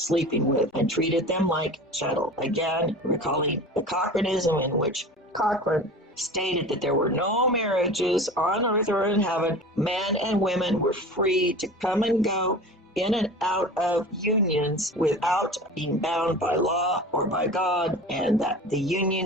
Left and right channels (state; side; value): normal; both; correlation 0.36